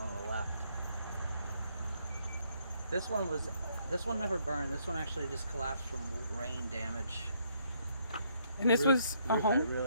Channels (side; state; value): both; inverted; correlation -0.71